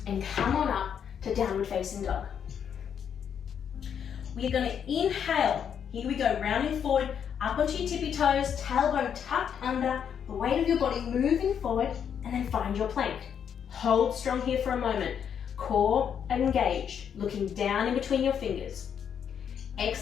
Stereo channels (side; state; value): right; quieter; 8.1 dB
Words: and come on up to downward facing dog. We are going to inhale. Here we go, rounding forward, up onto your tippy toes, tailbone tucked under, the weight of your body moving forward, and then find your plank. Hold strong here for a moment. Core engaged, looking down in between your fingers.